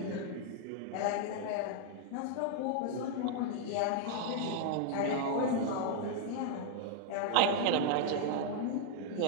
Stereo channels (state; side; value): different; both; correlation 0.00